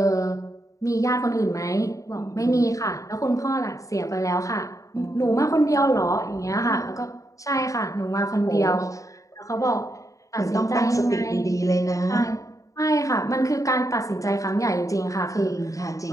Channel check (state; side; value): late; right; 0.16 ms